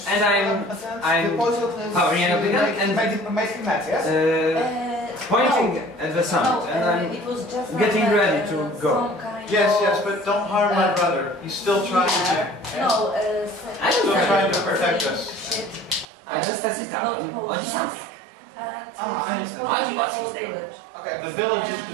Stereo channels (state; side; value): drops out; left; at 16.1 s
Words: And I'm powering up again and making that, yes? pointing at the sun, No, and I'm it was just getting like, ready to go. some kind Yes, of, but don't harm my brother. He's still trying to. No, I don't Still have trying it. to protect us. I just set it Not down. potions. something. And I understand. I do the what whole she's saying. village. Okay. The village is